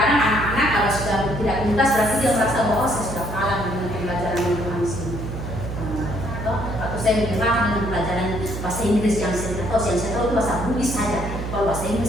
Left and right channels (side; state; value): right; noise; hum, 6 dB below the sound